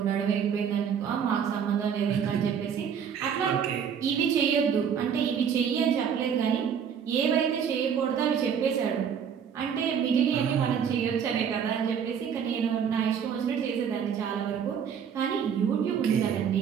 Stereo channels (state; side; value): quieter; left; 7.6 dB